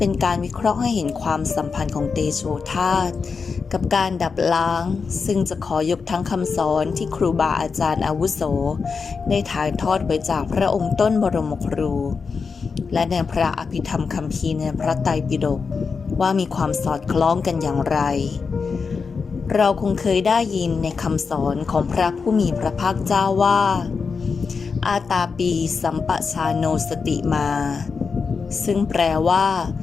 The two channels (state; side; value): quieter; right; 5.2 dB